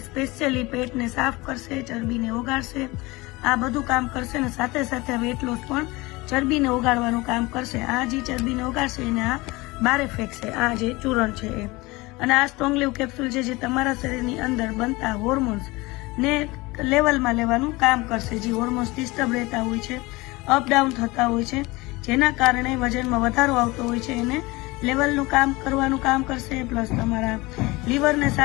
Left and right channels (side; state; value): right; quieter; 22.5 dB